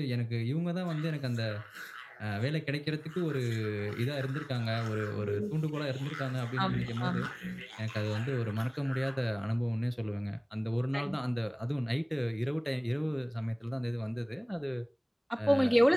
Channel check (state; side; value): identical; both; correlation 1.00